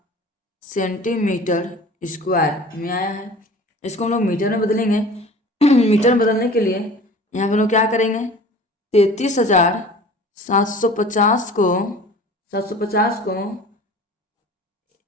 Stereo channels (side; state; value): both; normal; correlation 0.43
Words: सेंटीमीटर स्क्वायर में आया है। इसको हम लोग मीटर में बदलेंगे। मीटर में बदलने के लिए यहाँ पे हम लोग क्या करेंगे? 33,750 को 750 को